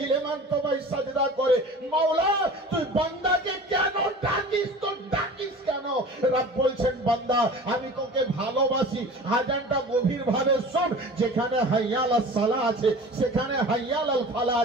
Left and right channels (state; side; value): normal; both; correlation 0.39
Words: তোমায় সাজদা করে। মাওলা তুই বান্দাকে কেন ডাকিস? তো ডাকিস কেন? রব বলছেন, বান্দা আমি তোকে ভালোবাসি। আজানটা গভীর ভাবে শোন, যেখানে হাইয়া আলাস সালাহ আছে সেখানে হাইয়া আলাল ফালাহ